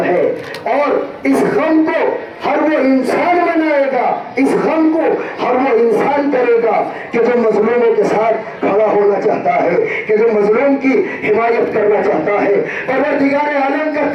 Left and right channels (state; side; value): identical; both; correlation 1.00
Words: है। और इस गम को हर वो इंसान मनाएगा, इस गम को हर वो इंसान करेगा कि जो मजलूमों के साथ खड़ा होना चाहता है, कि जो मजलूम की हिमायत करना चाहता है। परवरदिगार आलम का